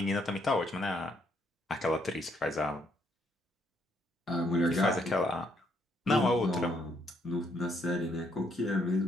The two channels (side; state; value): both; normal; correlation 0.71